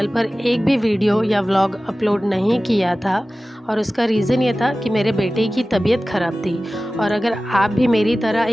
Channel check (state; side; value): normal; both; correlation 0.96